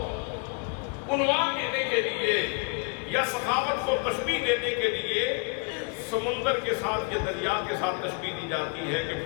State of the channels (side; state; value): right; quieter; 33.2 dB